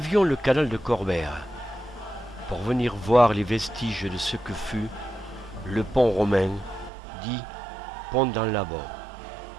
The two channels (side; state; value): left; drops out; at 6.9 s